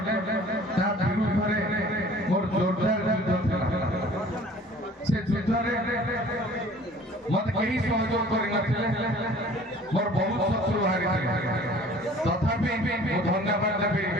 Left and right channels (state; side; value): normal; both; correlation 0.49